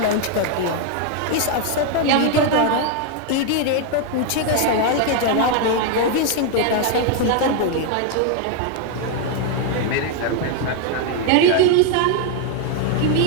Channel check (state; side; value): different; both; correlation 0.01